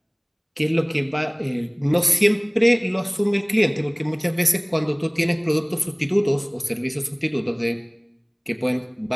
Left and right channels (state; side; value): identical; both; correlation 1.00